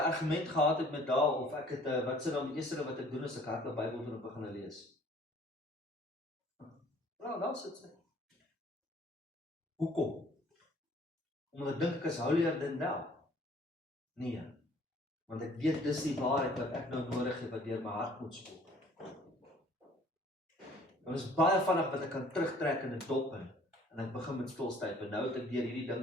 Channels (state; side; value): normal; both; correlation 0.55